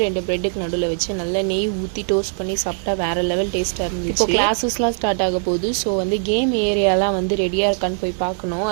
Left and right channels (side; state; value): left; silent; 65 dB below the other